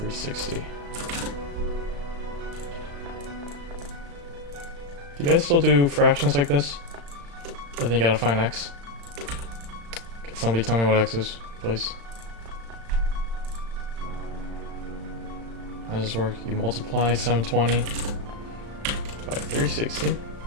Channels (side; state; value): left; late; 35 ms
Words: Do you guys still do fractions like this? I think you gotta find x. Could somebody tell me what x is, please? How does this work? You multiply 720 by 360.